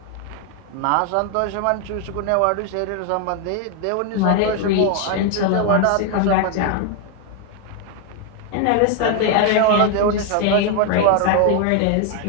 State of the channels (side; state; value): both; different; correlation 0.01